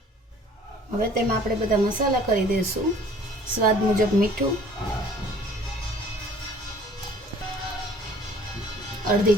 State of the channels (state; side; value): normal; both; correlation 0.52